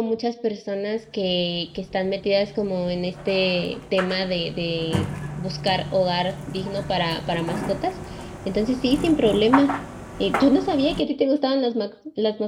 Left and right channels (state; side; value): identical; both; correlation 1.00